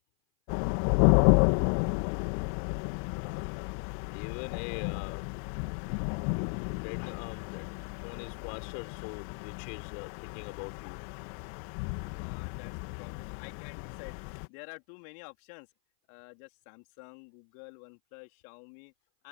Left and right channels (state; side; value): silent; right; 55 dB below the other